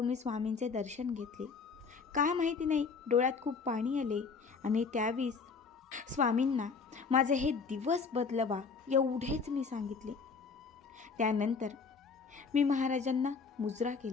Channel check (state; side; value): quieter; right; 5.1 dB